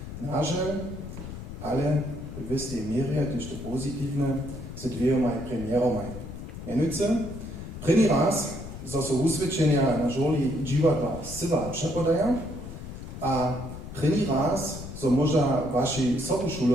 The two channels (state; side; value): noise; left; rumble, 10 dB below the sound